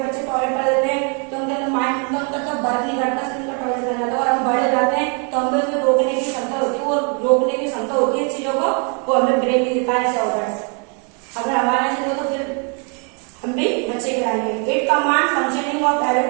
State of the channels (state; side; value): quieter; left; 37.9 dB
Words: बच्चे टॉयलेट कर देते हैं तो उनके अंदर माइंड उनका वर्क नहीं करता, सिर्फ उनका टॉयलेट कर जाता है। और हम बड़े हो जाते हैं तो हमें उसमें रोकने की क्षमता होती है, वो रोकने की क्षमता होती है चीजों को, वो हमें ब्रेन नहीं देता है ऐसे ऑर्डर्स। अगर हमारा नहीं हो तो फिर हम भी बच्चे गिराएंगे। It command functioning of every